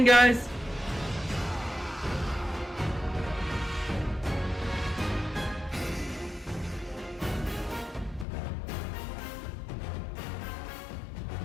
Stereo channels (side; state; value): right; drops out; at 8.2 s